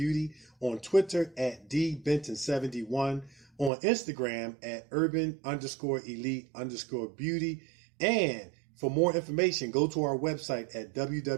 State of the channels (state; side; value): drops out; left; at 3.7 s